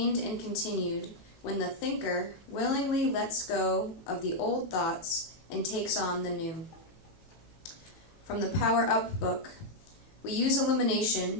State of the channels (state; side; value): late; right; 18 ms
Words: and continued when the thinker willingly lets go of the old thoughts and takes on the new. From the Power Up book. We use